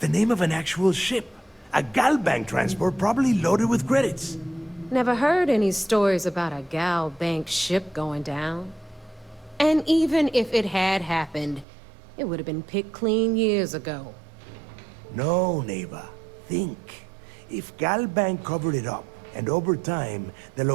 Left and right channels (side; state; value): left; drops out; at 11.7 s